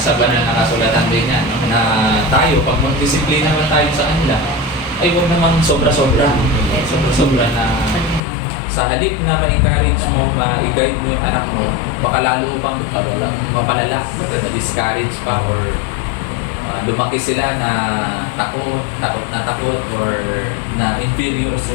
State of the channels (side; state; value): right; drops out; at 8.2 s